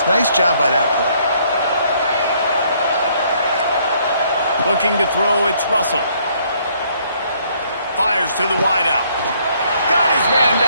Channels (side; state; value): both; inverted; correlation -0.66